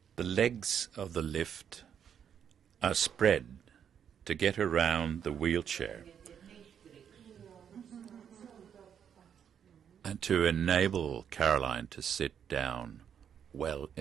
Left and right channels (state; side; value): quieter; left; 8.3 dB